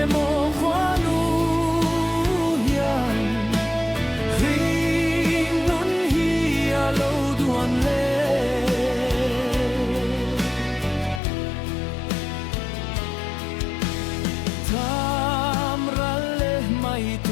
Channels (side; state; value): right; drops out; at 11.2 s